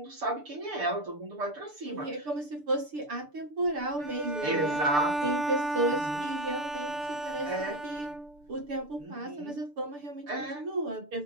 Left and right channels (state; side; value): late; left; 6.8 ms